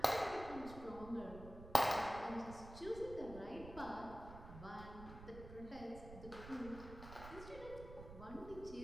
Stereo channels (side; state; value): right; noise; rumble, 12 dB below the sound